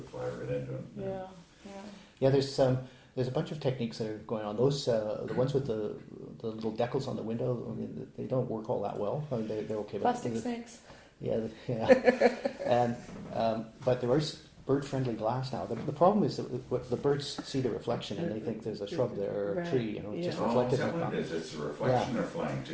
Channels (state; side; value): identical; both; correlation 1.00